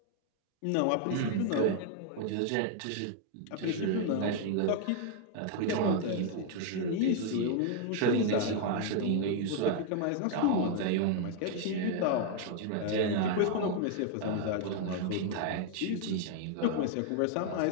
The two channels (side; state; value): both; different; correlation 0.00